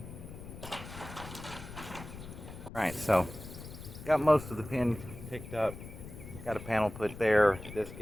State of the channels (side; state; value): left; noise; rumble, 12 dB below the sound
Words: Alright, so got most of the pen picked up. Got a panel put there. This